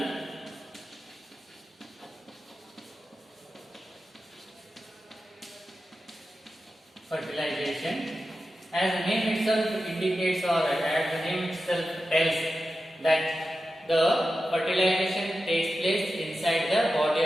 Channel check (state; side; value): normal; both; correlation 0.92